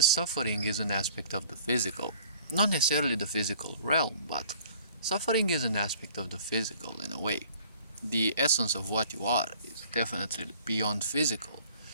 suffering is an aspect of the physical. Not necessarily the physical realm, but suffering is an aspect of the physical in a way. The essence of what you are is definitely beyond physical.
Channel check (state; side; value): inverted; both; correlation -0.52